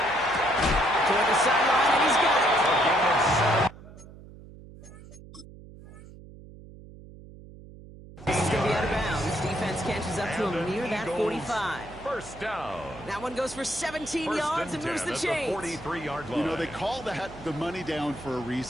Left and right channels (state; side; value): noise; right; hum, 18 dB below the sound